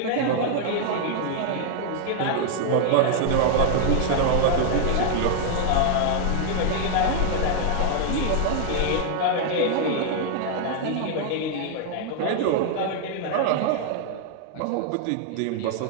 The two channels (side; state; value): both; different; correlation 0.00